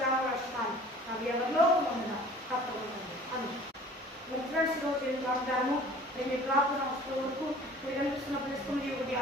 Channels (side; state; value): both; normal; correlation 0.47